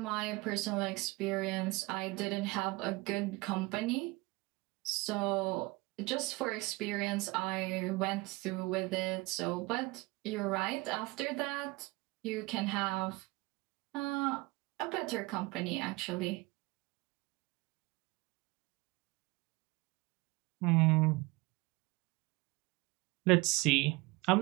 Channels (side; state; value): left; quieter; 23.4 dB